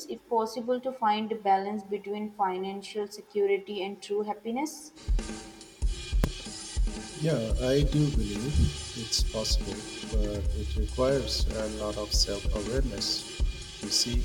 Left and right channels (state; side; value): identical; both; correlation 1.00